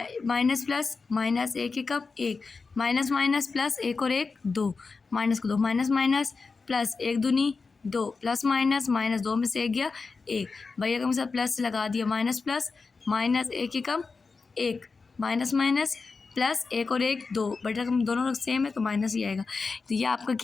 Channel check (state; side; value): quieter; right; 4.4 dB